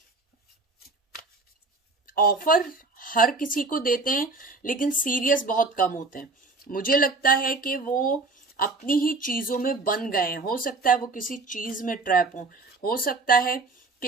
ऑफर हर किसी को देते हैं लेकिन सीरियस बहुत कम होते हैं। मुझे लगता है कि वो अपनी ही चीजों में बन गए हैं। हो सकता है वो किसी चीज में ट्रैप हो सकता है कि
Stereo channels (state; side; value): quieter; left; 3.6 dB